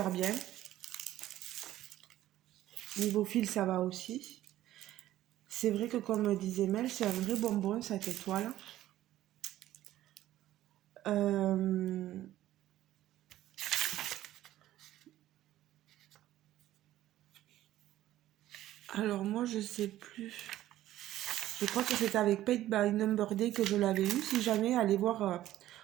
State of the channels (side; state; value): left; quieter; 13.9 dB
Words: bien. Niveau fil, ça va aussi. C'est vrai que comme disait Mel, c'est un vrai bonbon cette étoile. Alors moi, je sais plus. Je crois que c'était avec Paint by Number Day que je l'avais eu. Si jamais, allez voir